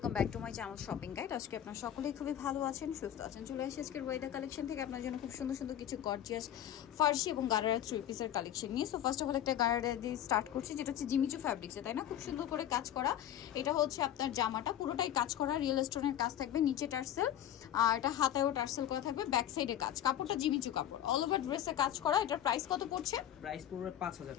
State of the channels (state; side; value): quieter; right; 11.2 dB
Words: back to my channel shopping guide. আজকে আপনারা সকলেই খুবই ভালো আছেন, সুস্থ আছেন। চলে আসি আজকের ওয়াইদা কালেকশন থেকে আপনার জন্য খুব সুন্দর সুন্দর কিছু গর্জিয়াস ফার্সি এবং গারারা থ্রি পিসের কালেকশন নিয়ে। সো ফার্স্ট অফ অল একটা গারারা দিয়ে স্টার্ট করছি, যেটা হচ্ছে জিমিচু ফ্যাব্রিক্সে, তাই না? খুব সুন্দর করে কাজ করা। এটা হচ্ছে আপনার জামাটা পুরোটাই কাজ করা, রিয়েল স্টোনের কাজ থাকবে, নিচে টার্সেল আর এটা হাতায়ও টার্সেল করা থাকবে, ব্যাক সাইডে কাজ। কাপড়টা জিমিচু কাপড়, অল ওভার ড্রেসে কাজ করা। এটার প্রাইস কত পড়ছে? প্রাইস পড়বে 5000